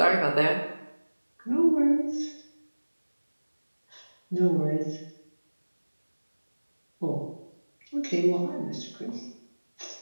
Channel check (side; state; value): both; inverted; correlation -1.00